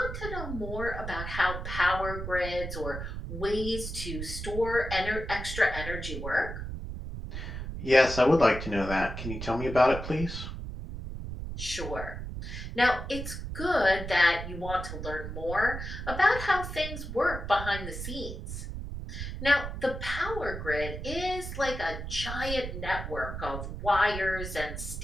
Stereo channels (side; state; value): right; noise; rumble, 7 dB below the sound